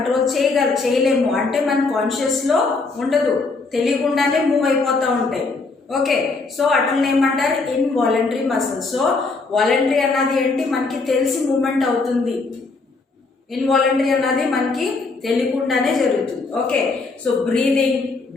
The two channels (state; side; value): quieter; right; 3.9 dB